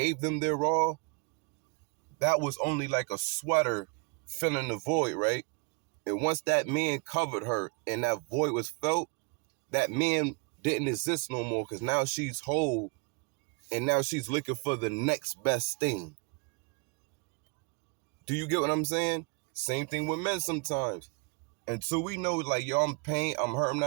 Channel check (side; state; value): left; quieter; 32.6 dB